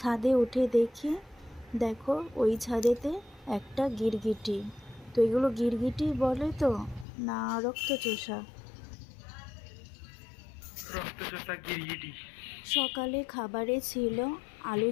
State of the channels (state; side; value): drops out; right; at 7.1 s